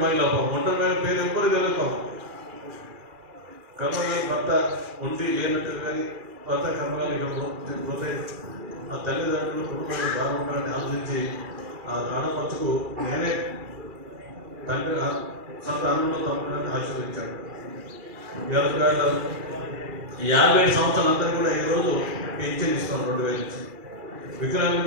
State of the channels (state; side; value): late; left; 2.4 ms